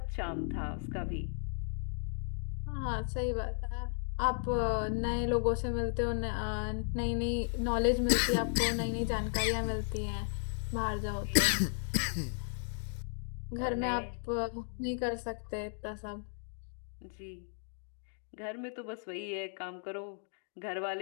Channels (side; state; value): right; silent; 54 dB below the other